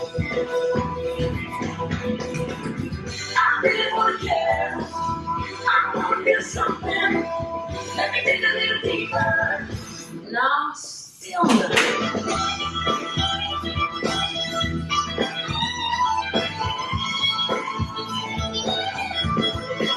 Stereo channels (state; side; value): identical; both; correlation 1.00